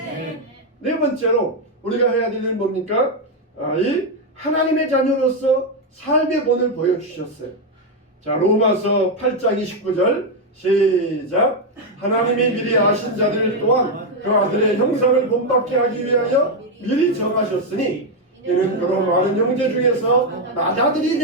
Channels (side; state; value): both; normal; correlation 0.03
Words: 네 번째로 우리가 해야 될 일은 뭡니까? 이 하나님의 자녀로서 삶의 본을 보여주셨어요. 자, 로마서 8장 29절 시작. 하나님이 미리 아신 자들 또한 그 아들의 형상을 본받게 하기 위하여 미리 정하셨으니 이는 그로 많은 형제 중에서 맏아들이